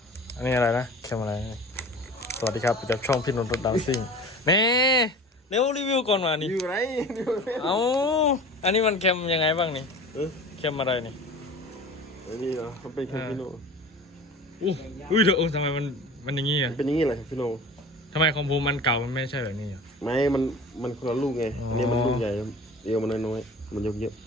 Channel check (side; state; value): both; normal; correlation 0.39